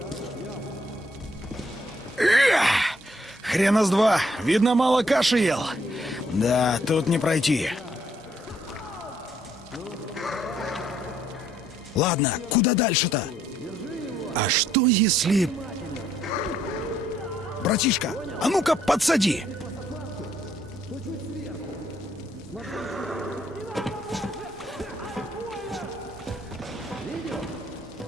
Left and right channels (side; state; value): both; normal; correlation 0.69